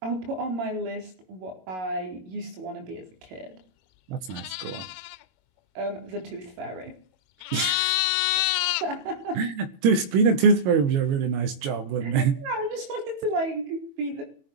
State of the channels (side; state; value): left; late; 22 ms